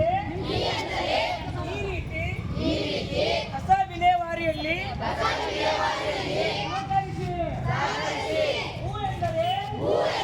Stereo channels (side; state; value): both; identical; correlation 1.00